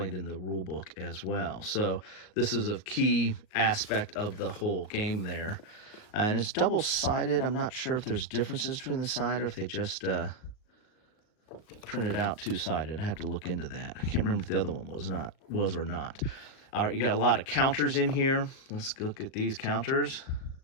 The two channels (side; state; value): right; late; 38 ms